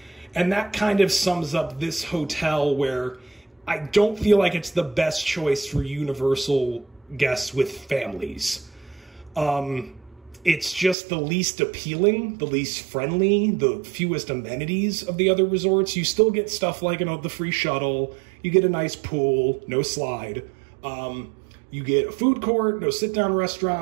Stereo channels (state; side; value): drops out; left; at 11.0 s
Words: And that kind of sums up this hotel, where I don't feel like it's the best choice for Universal guests with families. It's just the least appealing, the least friendly, the fewest amenities of the other resorts. You still get stuff like, the free shuttle. You get a nice pool, no slide. You get a food court, no sit-down